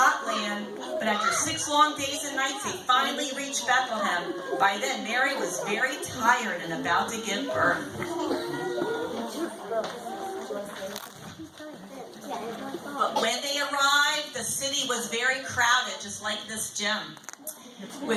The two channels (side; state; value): both; identical; correlation 1.00